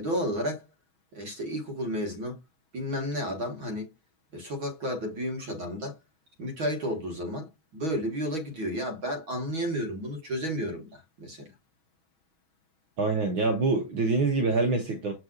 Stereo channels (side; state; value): left; late; 6.2 ms